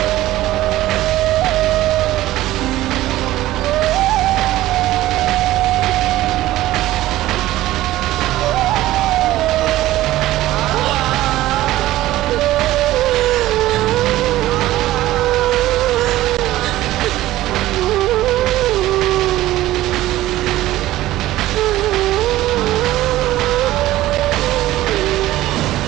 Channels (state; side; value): quieter; left; 15.6 dB